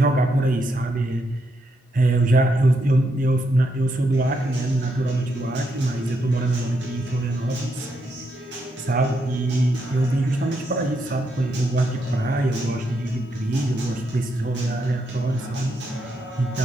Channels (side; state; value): both; normal; correlation 0.79